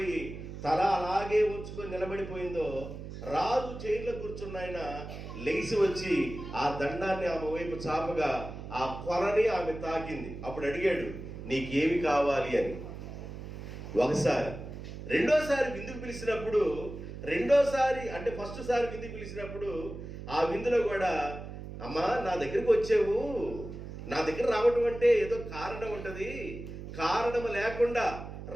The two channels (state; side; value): noise; right; hum, 10 dB below the sound